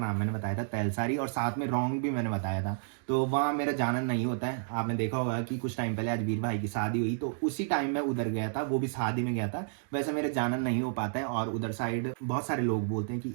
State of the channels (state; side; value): silent; left; digital silence